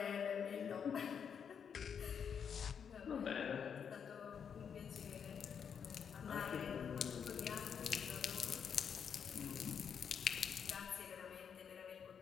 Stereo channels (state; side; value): quieter; right; 7.3 dB